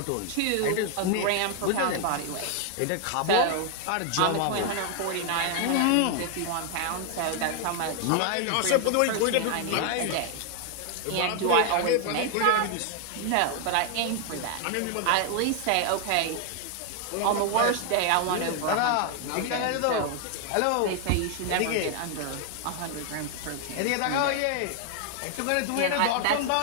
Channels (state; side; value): different; both; correlation 0.00